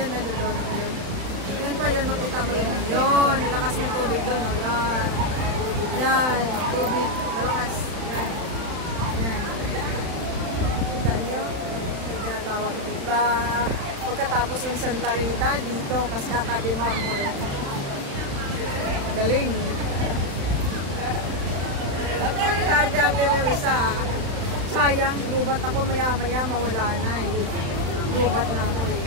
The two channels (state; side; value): late; left; 35 ms